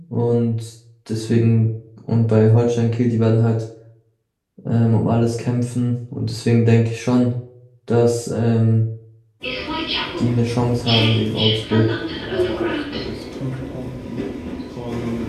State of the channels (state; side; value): identical; both; correlation 1.00